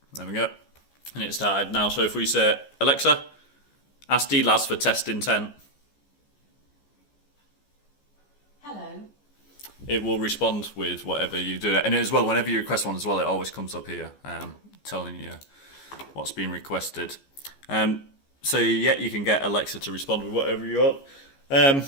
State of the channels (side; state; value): right; late; 14 ms